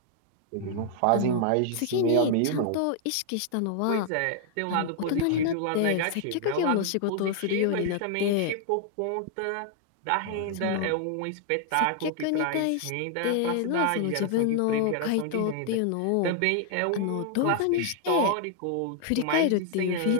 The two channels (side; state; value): both; different; correlation 0.00